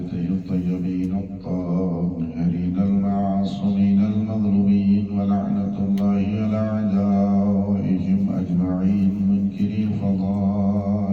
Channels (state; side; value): identical; both; correlation 1.00